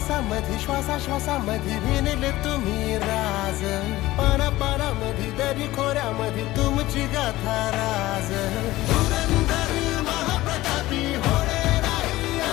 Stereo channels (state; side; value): quieter; right; 17.3 dB